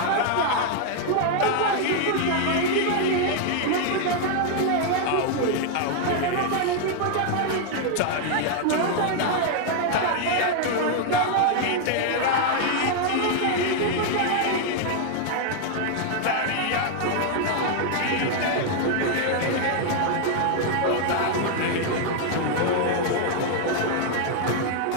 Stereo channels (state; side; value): different; both; correlation 0.00